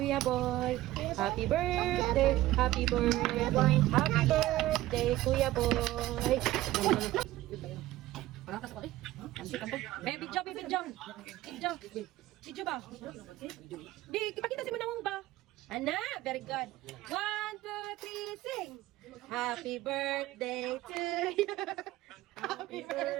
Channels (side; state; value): left; quieter; 16.1 dB